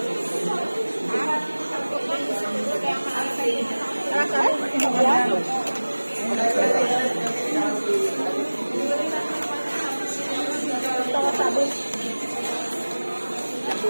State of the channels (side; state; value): both; inverted; correlation -1.00